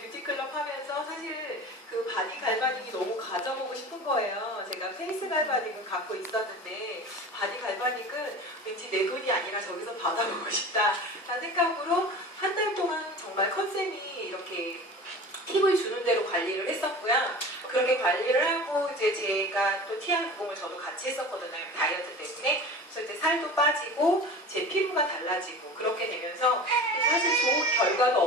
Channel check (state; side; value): normal; both; correlation 0.36